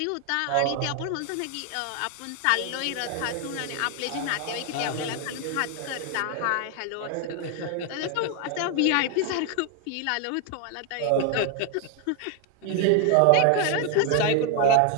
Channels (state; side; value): different; both; correlation 0.01